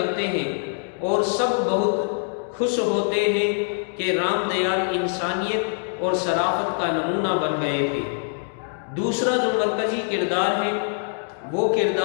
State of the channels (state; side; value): silent; right; 63 dB below the other